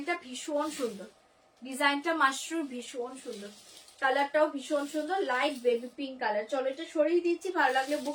ভীষণ সুন্দর, ডিজাইনটা মাশরুর ভীষণ সুন্দর, কালারটাও ভীষণ সুন্দর, লাইট বেবি পিঙ্ক কালার। চলো এটা সরিয়ে দিচ্ছি, ভালো লাগলে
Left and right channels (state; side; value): identical; both; correlation 1.00